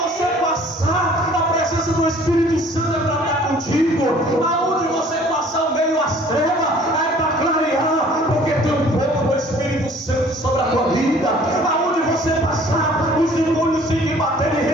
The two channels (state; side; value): normal; both; correlation 0.53